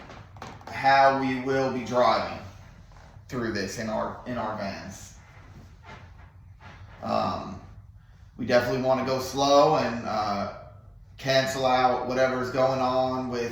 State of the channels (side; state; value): both; identical; correlation 1.00